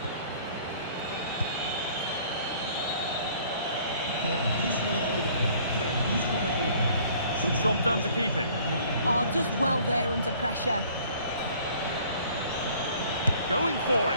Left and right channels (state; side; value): inverted; both; correlation -0.55